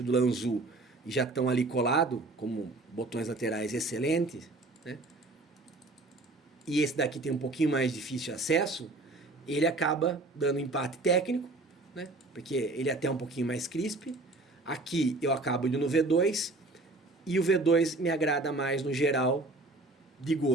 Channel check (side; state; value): left; quieter; 3.1 dB